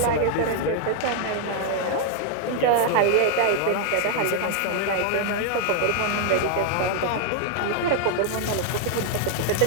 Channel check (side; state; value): both; different; correlation 0.00